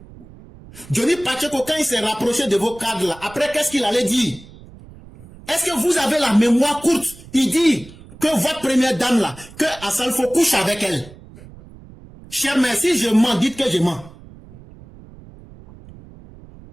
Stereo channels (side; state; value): right; noise; rumble, 20 dB below the sound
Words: Johnny Pacheco, quand il s'est rapproché de vos cadres là, après qu'est-ce qu'il allait dire? Est-ce que vous avez la mémoire courte? Il dit que votre première dame là, que Assalfo couche avec elle. Cher mère, si je mens, dites que je mens.